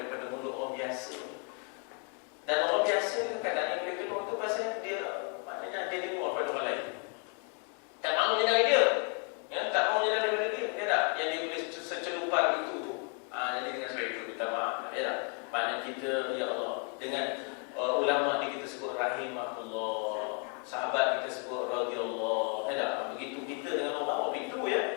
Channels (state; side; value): quieter; right; 39.3 dB